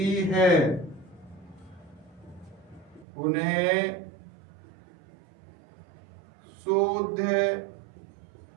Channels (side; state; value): left; drops out; at 3.1 s